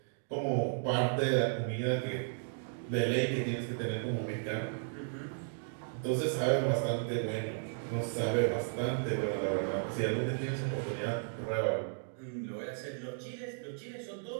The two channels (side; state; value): left; silent; digital silence